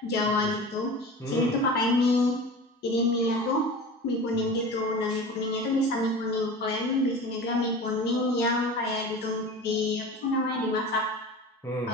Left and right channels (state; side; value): normal; both; correlation 0.34